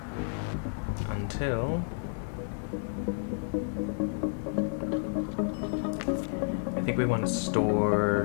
until I think we want to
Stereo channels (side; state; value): right; silent; 57 dB below the other